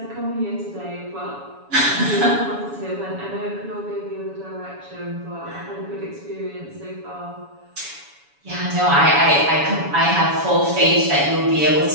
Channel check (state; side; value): late; left; 7.1 ms